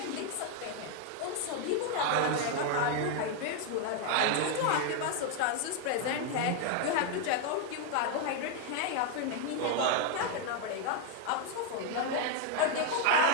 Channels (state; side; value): different; both; correlation 0.01